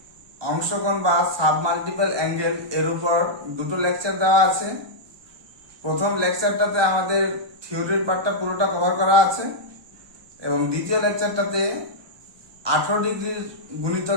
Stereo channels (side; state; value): left; late; 1.2 ms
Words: অংশকোণ বা সাব মাল্টিপল অ্যাঙ্গেল এর উপর দুটো লেকচার দেওয়া আছে। প্রথম লেকচারটাতে আমাদের থিওরির পার্টটা পুরোটা কভার করা আছে এবং দ্বিতীয় লেকচারটাতে 18 ডিগ্রির